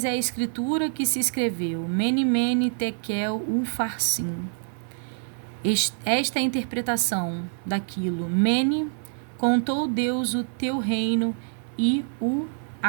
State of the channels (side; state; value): left; silent; 61 dB below the other